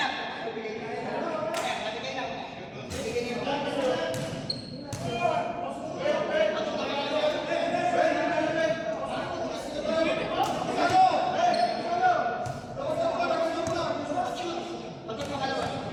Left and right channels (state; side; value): identical; both; correlation 1.00